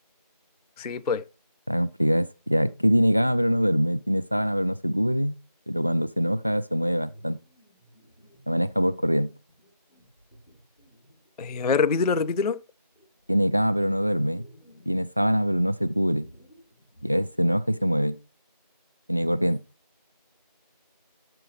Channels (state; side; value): inverted; both; correlation -0.89